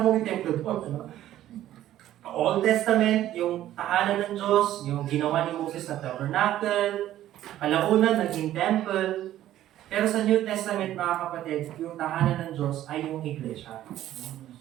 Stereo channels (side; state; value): left; quieter; 13.0 dB